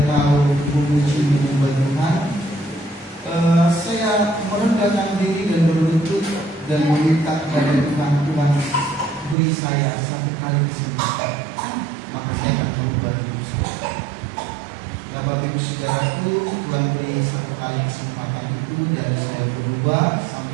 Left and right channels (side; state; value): left; drops out; at 9.3 s